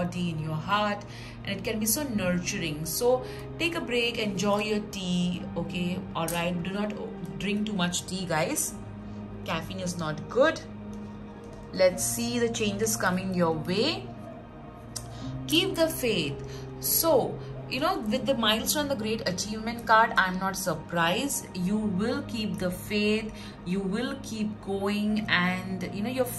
in your heart, and it can be so nurturing. So take a break, enjoy your tea. Okay, all right, do not drink too much tea, guys. Caffeine is not good. Let's see the changes coming your way. Keep the faith. So, you know, with the milestone, the great achievement card, I'm not surprised. You will keep the faith, you will keep going, and you know, your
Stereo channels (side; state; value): both; identical; correlation 1.00